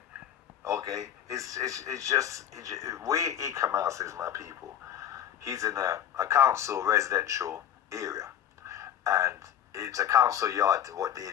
Okay, it's just where Eek-A-Mouse is, my people. He's in a council residential area, and it's a council yard. What they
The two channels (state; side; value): quieter; right; 10.2 dB